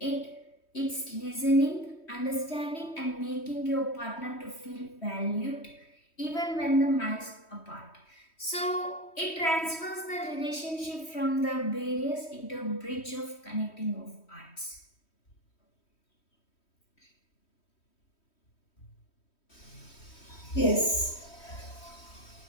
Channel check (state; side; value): late; right; 3.1 ms